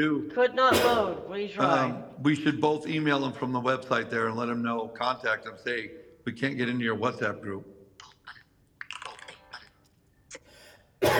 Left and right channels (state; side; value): identical; both; correlation 1.00